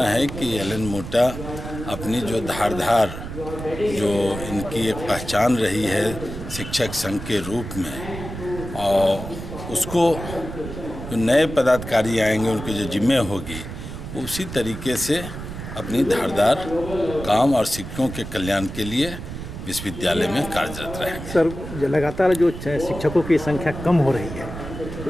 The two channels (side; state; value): right; noise; rumble, 9 dB below the sound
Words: है कि L&M Mutta अपनी जो धारदार, जो इनकी एक पहचान रही है शिक्षक संघ के रूप में, और उसको जो नए पदाधिकारी आएंगे उनकी जो जिम्मे होगी, उसी तरीके से अपनी धारदार काम और शिक्षकों के कल्याण के लिए विश्वविद्यालय में कार्यरत रहेंगे। सर, लगातार जो शिक्षकों की संख्या कम हो रही है,